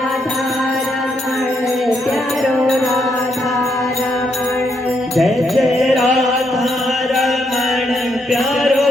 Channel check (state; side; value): normal; both; correlation 0.77